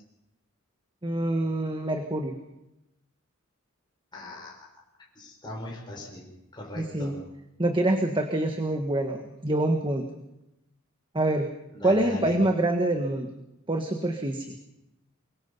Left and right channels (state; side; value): normal; both; correlation 0.67